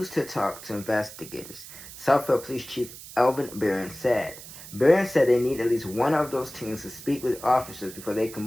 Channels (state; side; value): noise; right; hiss, 15 dB below the sound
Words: to talk to investigators, Southfield Police Chief Elvin Barron said. Barron said they need at least one of those teams to speak with officers before they can